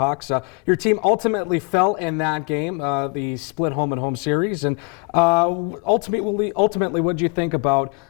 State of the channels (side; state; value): right; quieter; 34.2 dB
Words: Your team ultimately fell in that game, the split home and home series. And ultimately, what did you think about